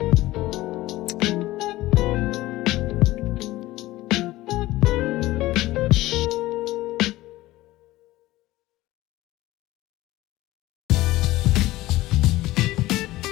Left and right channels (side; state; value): right; quieter; 17.4 dB